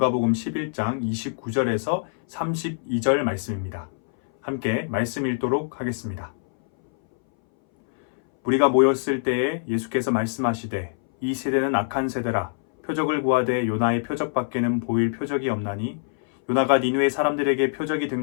11장 29절에서 32절 말씀입니다. 함께 말씀 읽도록 하겠습니다. 우리가 모였을 때에 예수께서 말씀하시되 이 세대는 악한 세대라 표적을 구하되 요나의 표적밖에는 보일 표적이 없나니 요나가 니느웨 사람들에게 표적이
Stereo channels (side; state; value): right; silent; 61 dB below the other